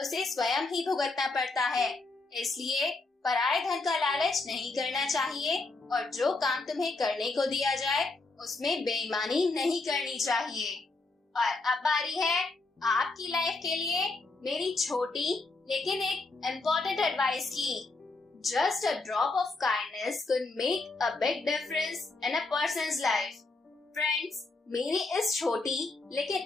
उसे स्वयं ही भुगतना पड़ता है। इसलिए पराये धन का लालच नहीं करना चाहिए और जो काम तुम्हें करने को दिया जाए उसमें बेईमानी नहीं करनी चाहिए। और अब बारी है आपकी लाइफ के लिए मेरी छोटी लेकिन एक इम्पोर्टेंट एडवाइस की। Just a drop of kindness could make a big difference in a persons life. Friends, मेरी इस छोटी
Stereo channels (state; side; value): quieter; right; 3.5 dB